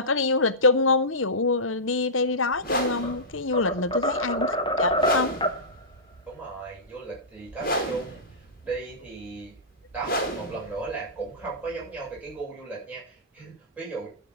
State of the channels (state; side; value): normal; both; correlation -0.18